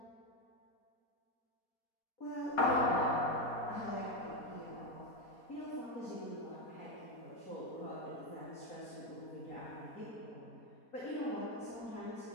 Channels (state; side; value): late; right; 4.2 ms